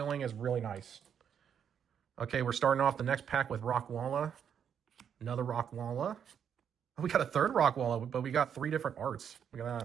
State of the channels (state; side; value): quieter; left; 8.1 dB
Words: is really nice. Okay, we're starting off the next pack with Rockwalla. Another Rockwalla. Oh, we got a third Rockwalla, but we got 3 different arts. We got